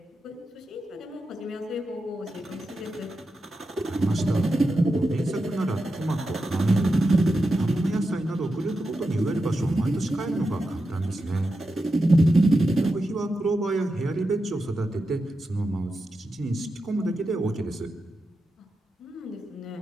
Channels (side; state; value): both; normal; correlation 0.89